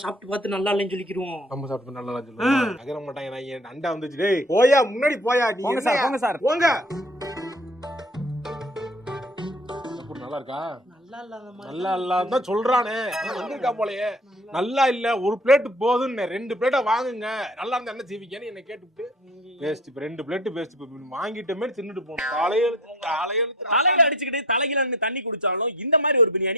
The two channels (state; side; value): normal; both; correlation 0.45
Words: சாப்பிட்டு பார்த்து நல்லா இல்லைன்னு சொல்லிக்கிறோம். நம்ம சாப்பிட்டு நல்லா இல்ல சொல்லுவாங்க, நகர மாட்டாங்க. நான் அண்டா வந்துச்சு, டேய் போயா முன்னாடி போயா, நீ போங்க சார், போங்க சார், போங்க. நல்லா இருக்கா? நல்லா இல்லாதான் சொல்றானே, வந்திருக்கா போலயே. நல்லா இல்ல, ஒரு பிளேட் போதுன்னு 2 பிளேட்டா வாங்குங்க, நல்லா இருந்தா என்ன செய்வீங்கன்னு என்ன கேட்டுட்டு பேஸ்ட் இப்ப 2 பிளேட் பேஸ்ட் வாங்கிட்டமே தின்னுட்டு போணும். தலையில அடிச்சுக்கிட்டு தலையில தண்ணி குடிச்சாலும் இந்த மாதிரி ஒரு